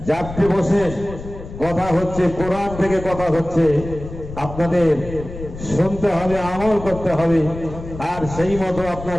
যাত্রী বসে কথা হচ্ছে, কোরআন থেকে কথা হচ্ছে, আপনাদের শুনতে হবে, আমল করতে হবে, আর সেই মতো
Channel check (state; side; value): noise; left; rumble, 11 dB below the sound